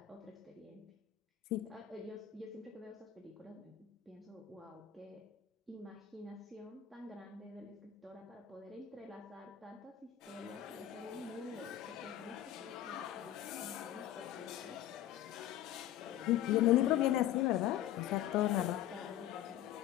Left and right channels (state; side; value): quieter; right; 11.9 dB